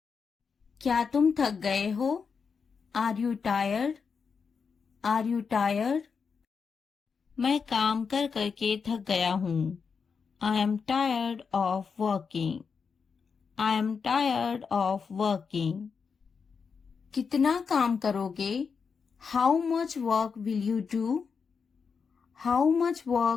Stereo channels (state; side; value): quieter; right; 5.7 dB